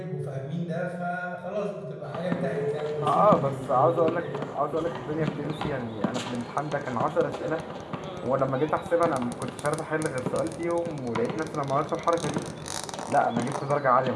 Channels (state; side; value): identical; both; correlation 1.00